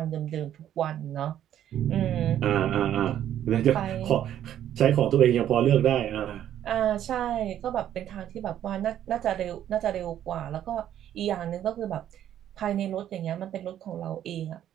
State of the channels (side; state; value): left; quieter; 11.0 dB